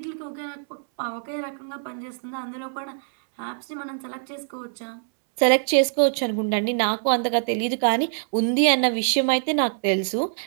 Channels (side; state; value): left; silent; 62 dB below the other